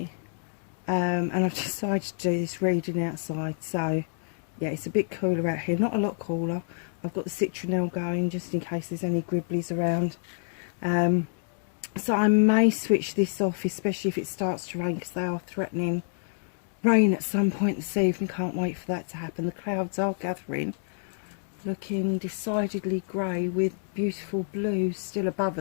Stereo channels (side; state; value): right; silent; digital silence